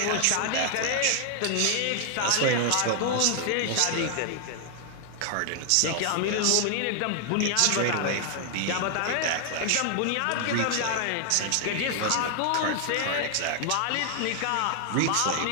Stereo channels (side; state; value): both; different; correlation 0.00